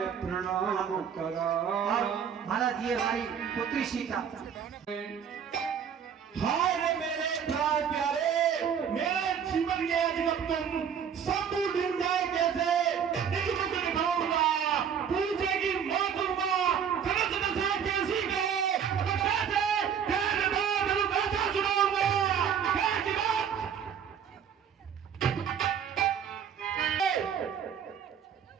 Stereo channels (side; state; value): left; quieter; 7.9 dB